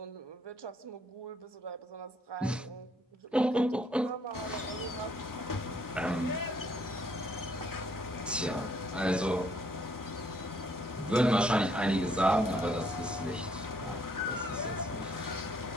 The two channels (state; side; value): normal; both; correlation 0.67